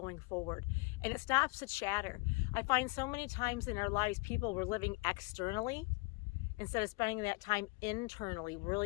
forward. And it stops the chatter. I find so many times in our lives, people were living externally instead of spending that time internally,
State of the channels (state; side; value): quieter; right; 27.5 dB